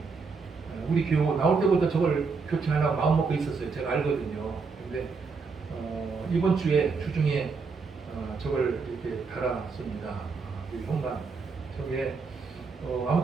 우리 교회 나올 때부터 저걸 교체하려고 마음 먹고 있었어요. 제가 알거든요. 근데 이번 주에 주중에 저걸 이렇게 달았습니다. 그 현관 저게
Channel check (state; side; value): quieter; left; 4.8 dB